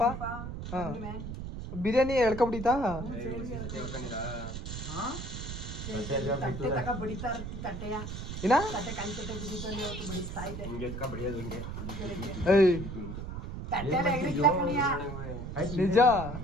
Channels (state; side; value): noise; right; rumble, 7 dB below the sound